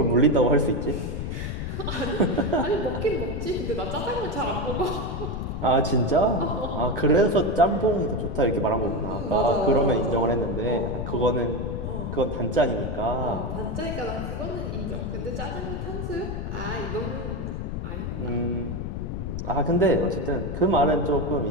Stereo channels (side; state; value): left; noise; rumble, 4 dB below the sound